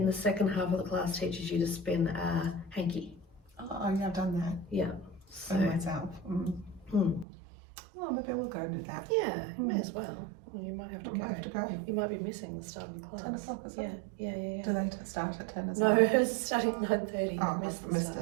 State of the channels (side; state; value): left; drops out; at 7.2 s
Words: the second half of the class, teaches you to spin a hanky. Oh, yeah, I've done that. Yeah. So myself. Well, maybe I will go and do that. Yeah, you may as well. Well, you might have to I go. might have to go. You might be missing the start of the class. 10 o'clock, is Yeah, it? yeah. Do they start at 10 as No, well? it's starting at 9:30. Oh, You've missed I've the missed